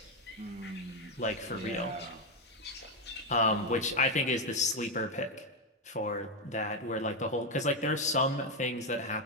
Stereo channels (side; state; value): both; normal; correlation 0.06